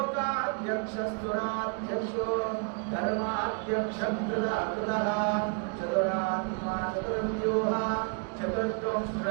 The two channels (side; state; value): left; quieter; 39.0 dB